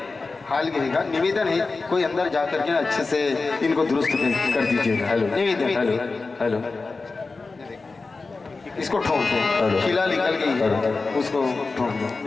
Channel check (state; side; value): quieter; right; 3.9 dB